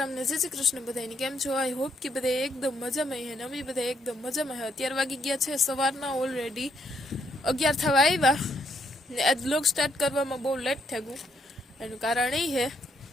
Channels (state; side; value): normal; both; correlation 0.72